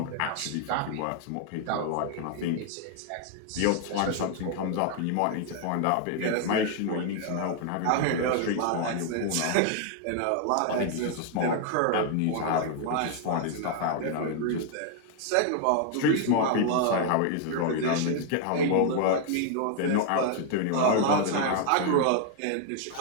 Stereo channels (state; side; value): different; both; correlation 0.00